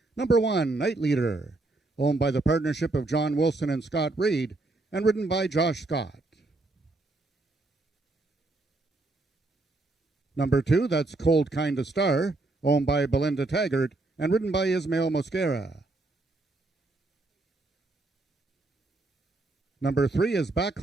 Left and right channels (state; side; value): quieter; left; 3.1 dB